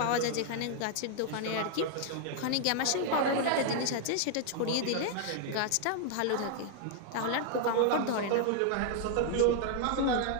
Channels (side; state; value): both; different; correlation 0.00